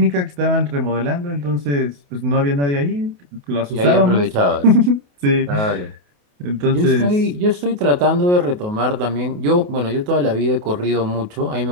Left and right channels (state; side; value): late; left; 28 ms